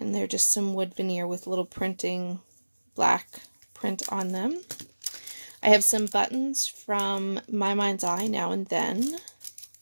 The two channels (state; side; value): inverted; both; correlation -1.00